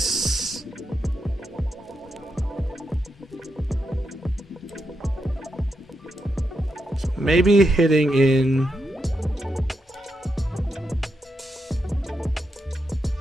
So maybe hitting in.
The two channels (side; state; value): both; normal; correlation 0.84